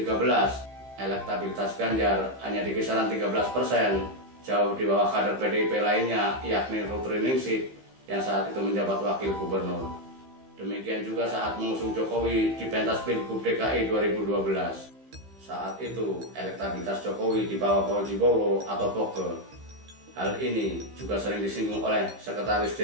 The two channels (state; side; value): late; left; 15 ms